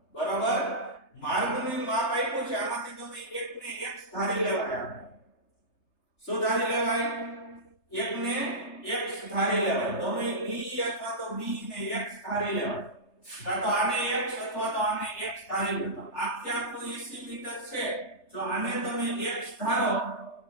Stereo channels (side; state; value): right; late; 3.3 ms